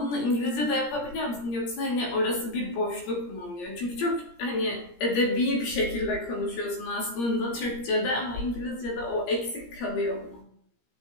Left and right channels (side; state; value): right; late; 17 ms